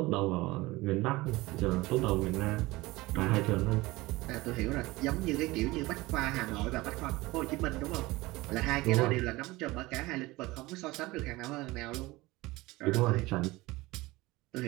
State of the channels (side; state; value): left; quieter; 20.5 dB